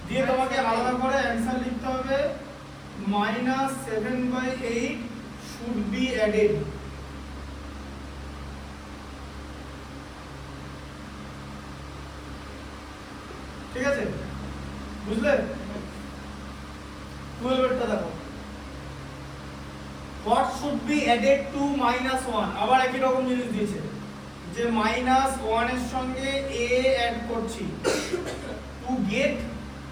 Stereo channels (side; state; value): both; identical; correlation 1.00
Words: দিয়ে তোমাকে আলাদা করে অ্যানসার লিখতে হবে -7/8 should be added ঠিক আছে বুঝলে 12 এরটা দেখো what should be added to -1 আবার একই রকম জিনিস দিয়েছে যে -1 এর সঙ্গে a অ্যাড করছি to get